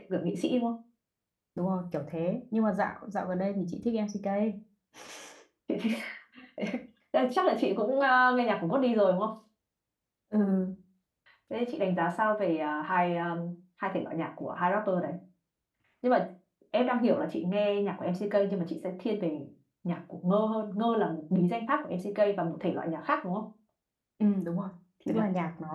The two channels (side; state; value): both; identical; correlation 1.00